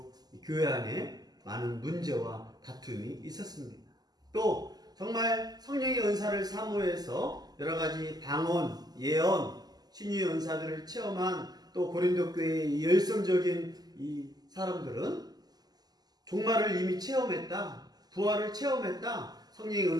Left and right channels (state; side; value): late; left; 0.20 ms